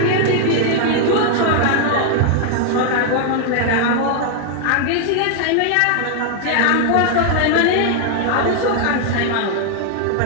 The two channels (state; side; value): different; both; correlation 0.00